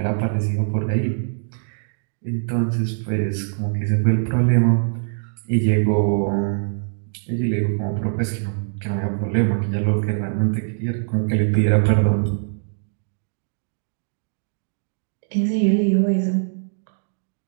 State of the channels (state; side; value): silent; left; digital silence